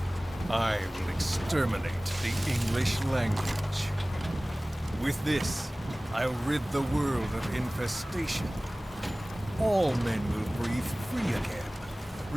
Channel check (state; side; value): normal; both; correlation 0.98